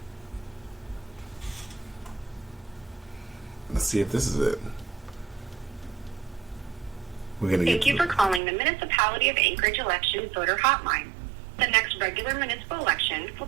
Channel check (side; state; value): left; drops out; at 8.4 s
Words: Let's see if this is it. We're gonna get. Thank you for calling the Municipality of Anchorage Election Voter Hotline. The next regular municipal election